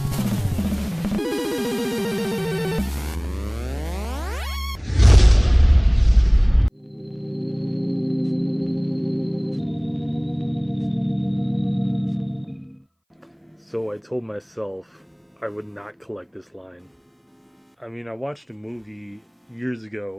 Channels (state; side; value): identical; both; correlation 1.00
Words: I told myself I would not collect this line. I mean, I watched a movie years